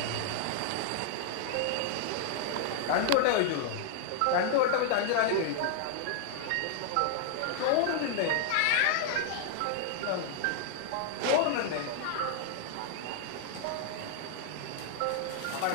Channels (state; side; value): different; both; correlation -0.01